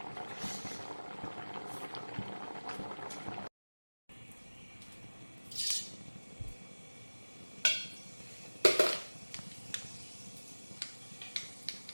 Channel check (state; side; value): inverted; both; correlation -1.00